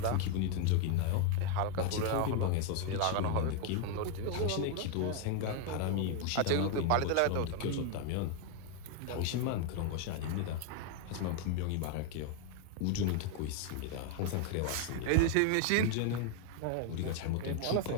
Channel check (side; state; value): both; different; correlation 0.00